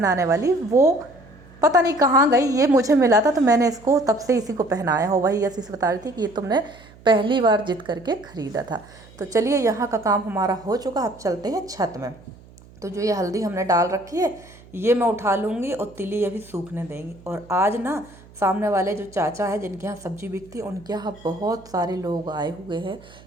वाली, वो पता नहीं कहाँ गई, ये मुझे मिला था, तो मैंने इसको तब से इसी को पहनाया हो। वही यशी से बता रही थी कि ये तुमने पहली बार जिद करके खरीदा था। तो चलिए, यहाँ का काम हमारा हो चुका, अब चलते हैं छत में। तो जो ये हल्दी हमने डाल रखी है ये मैं उठा लूँगी, और तिली अभी सूखने देंगी। और आज ना सामने वाले जो चाचा है जिनके यहाँ सब्जी बिकती है, उनके यहाँ बहुत सारे लोग आए हुए हैं,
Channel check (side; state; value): right; noise; hum, 23 dB below the sound